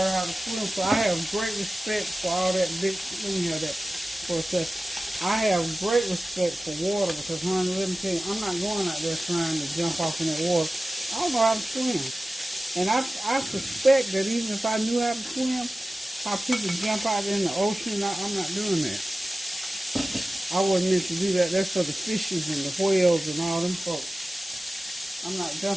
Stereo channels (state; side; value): normal; both; correlation 0.96